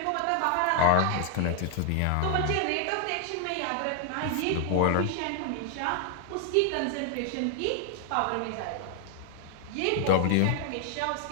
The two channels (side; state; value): both; different; correlation 0.00